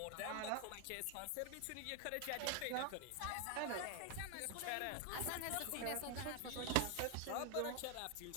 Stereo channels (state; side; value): different; both; correlation 0.01